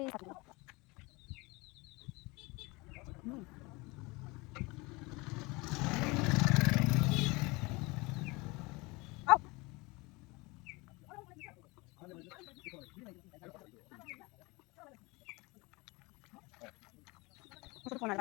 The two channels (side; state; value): right; quieter; 25.0 dB